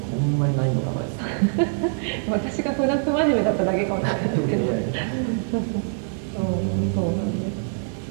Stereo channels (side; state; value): left; silent; digital silence